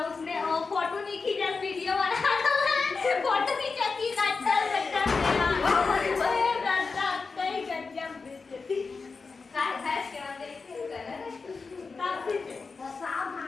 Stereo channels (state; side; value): quieter; right; 4.5 dB